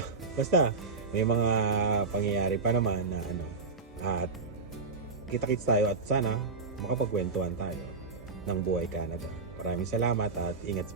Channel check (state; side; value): quieter; left; 4.0 dB